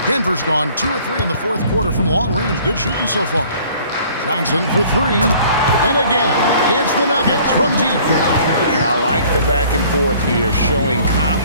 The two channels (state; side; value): inverted; both; correlation -0.54